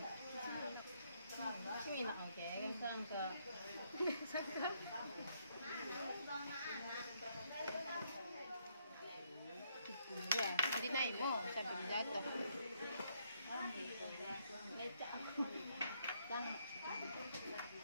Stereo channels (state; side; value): inverted; both; correlation -0.72